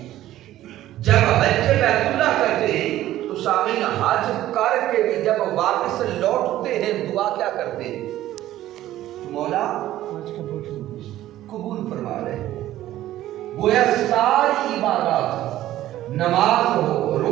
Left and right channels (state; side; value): quieter; left; 14.0 dB